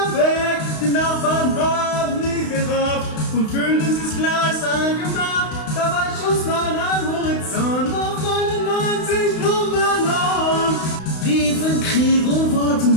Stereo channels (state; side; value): late; right; 32 ms